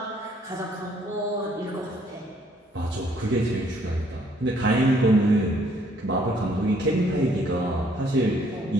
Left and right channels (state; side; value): normal; both; correlation 0.65